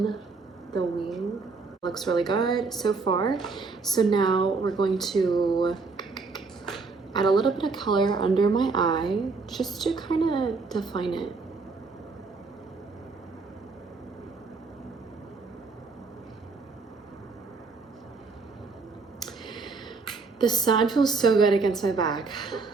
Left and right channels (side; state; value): left; quieter; 4.3 dB